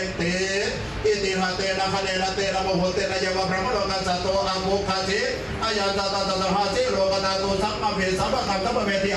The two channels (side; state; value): both; identical; correlation 1.00